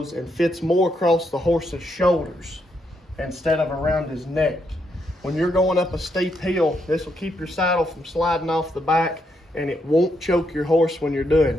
and fits more across the horse's shoulders instead of around his neck. When you're going up a steep hill, this will keep your saddle from sliding off the back, and it won't choke your horse when you're doing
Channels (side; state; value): both; normal; correlation 0.78